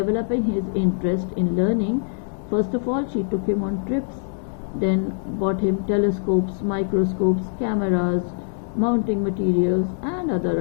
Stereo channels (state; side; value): silent; right; digital silence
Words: his interest in learning. First of all, she took him on trips, then bought him telescopes, microscopes, cameras, mounting materials, and